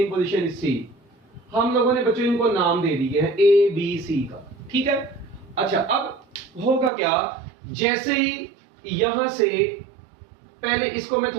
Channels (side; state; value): left; drops out; at 6.9 s